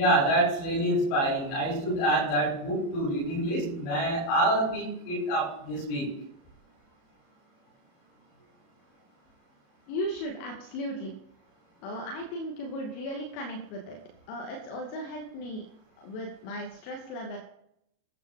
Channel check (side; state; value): right; late; 37 ms